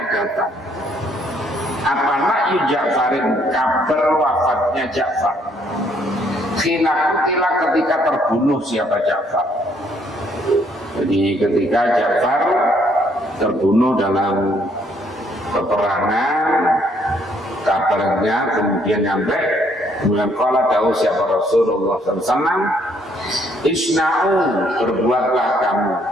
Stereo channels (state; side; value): normal; both; correlation 0.67